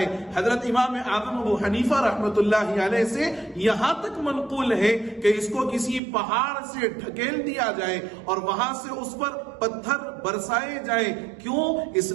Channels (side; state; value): left; drops out; at 6.0 s